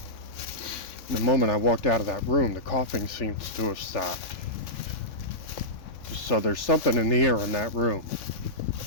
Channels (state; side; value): late; right; 3.6 ms